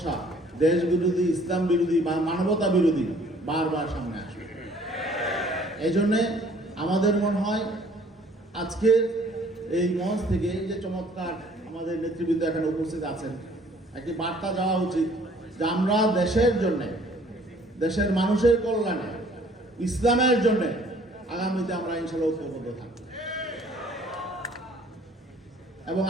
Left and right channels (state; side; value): normal; both; correlation 0.57